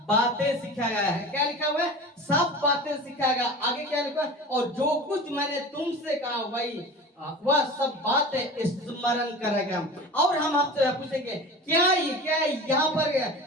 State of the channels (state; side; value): normal; both; correlation 0.35